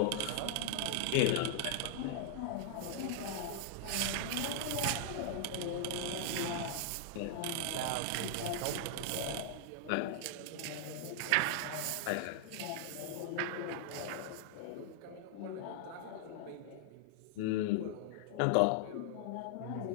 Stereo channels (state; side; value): different; both; correlation -0.01